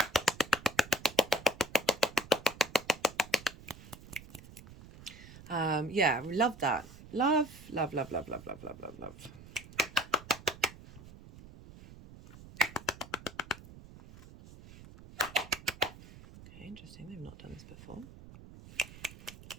Yeah, love that. Love. Okay, interesting. They've not done this before.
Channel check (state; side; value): noise; right; rumble, 18 dB below the sound